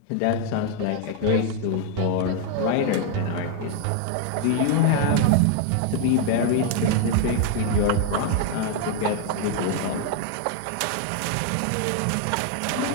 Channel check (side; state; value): both; different; correlation 0.00